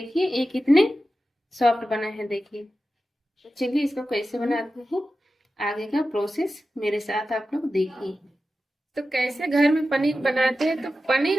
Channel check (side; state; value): both; normal; correlation 0.93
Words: ये कितने सॉफ्ट बना है। देखिए तो चलिए इसको कैसे बनाते हैं, आगे का प्रोसेस मेरे साथ आप लोग देखिए। तो कैसे घर में पनीर बनाते हैं। तो